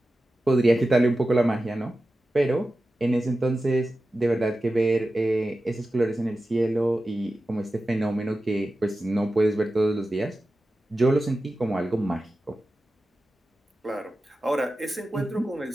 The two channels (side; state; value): both; normal; correlation 0.94